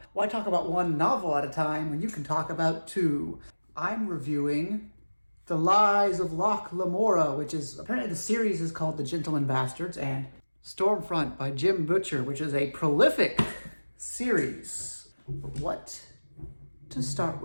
Why talk about one novel at a time when you can talk about two? I'm reviewing The Lies of Locke Lamorra, which is, apparently the series is called The Gentleman Bastards, and Stormfront by Jim Butcher, which is a prolific series. What to start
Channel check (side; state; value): both; inverted; correlation -1.00